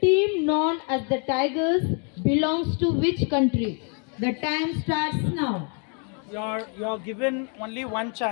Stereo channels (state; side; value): quieter; right; 39.7 dB